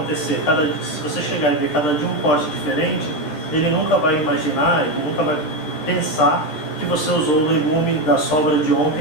Se você chegar e ver cada dia um corte diferente, ele nunca vai imaginar, ele nunca vai pensar que você usou o legume da sobra de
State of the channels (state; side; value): late; right; 13 ms